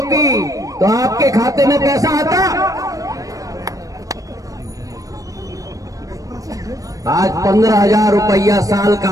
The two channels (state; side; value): late; left; 0.16 ms